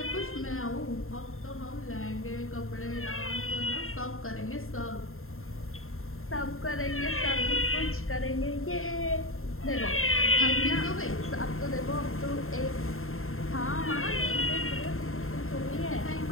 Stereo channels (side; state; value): right; late; 0.61 ms